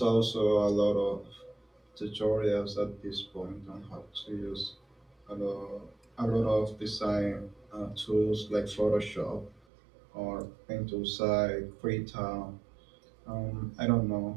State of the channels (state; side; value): drops out; left; at 9.6 s